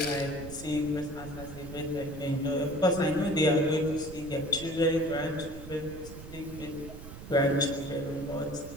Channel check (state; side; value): noise; right; rumble, 13 dB below the sound